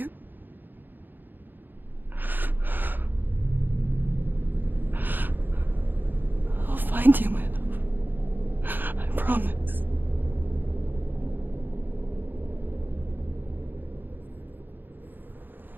I'll find you, my love. I promise.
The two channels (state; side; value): late; left; 0.091 ms